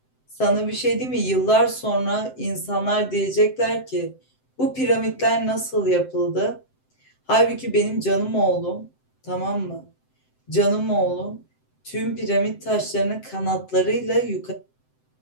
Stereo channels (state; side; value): late; right; 7.8 ms